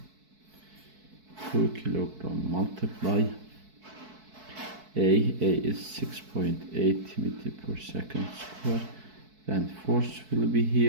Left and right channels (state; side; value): late; left; 4.6 ms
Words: 2 kilogram multiply A is 6.8 meter per second square. Then force will be